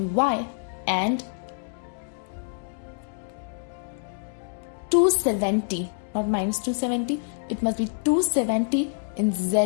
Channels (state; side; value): silent; right; digital silence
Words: Y and 270, not -270, it must be 270 in